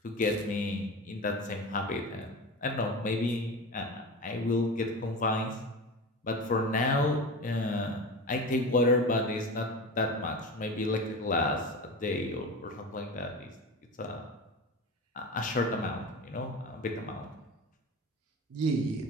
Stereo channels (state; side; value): normal; both; correlation 0.28